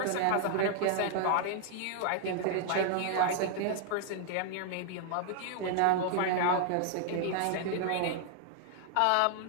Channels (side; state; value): both; different; correlation 0.00